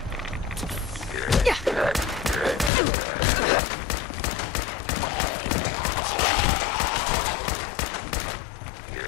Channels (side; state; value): right; drops out; at 2.7 s